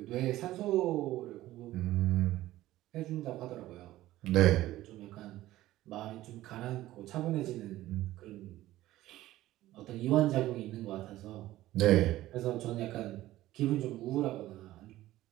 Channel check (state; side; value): quieter; left; 15.6 dB